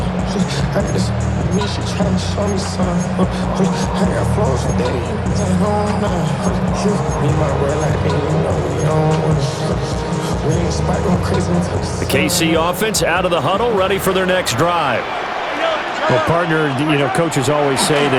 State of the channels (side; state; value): both; identical; correlation 1.00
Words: The KC offense out of the huddle, ready for their next drive. Well, partner, coaches always say